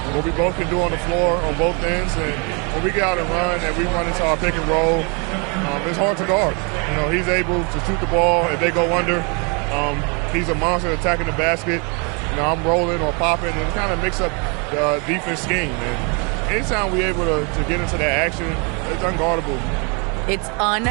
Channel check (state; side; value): quieter; left; 33.6 dB